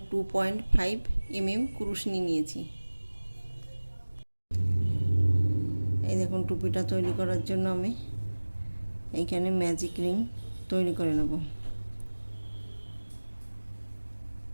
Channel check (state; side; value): inverted; both; correlation -1.00